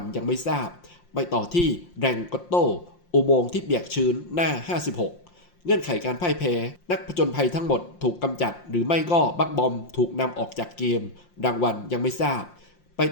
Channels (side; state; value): right; late; 5.7 ms